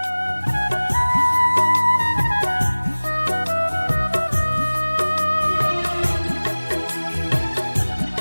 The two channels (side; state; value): both; inverted; correlation -1.00